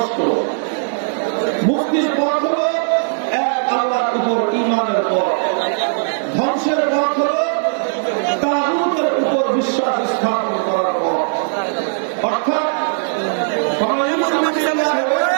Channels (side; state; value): left; silent; digital silence